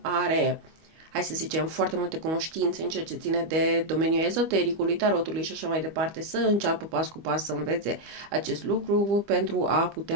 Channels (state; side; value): late; left; 25 ms